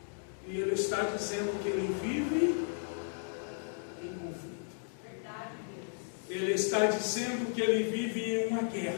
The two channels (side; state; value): right; silent; digital silence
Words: E ele está dizendo que ele vive em conflito. Ele está dizendo que ele vive em uma